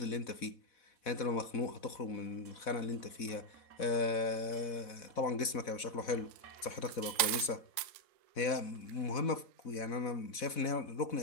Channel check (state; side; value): late; right; 4.1 ms